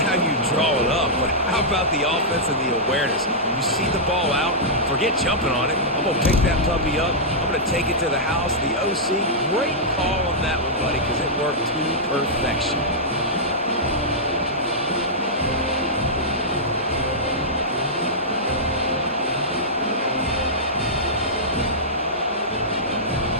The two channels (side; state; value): both; normal; correlation -0.11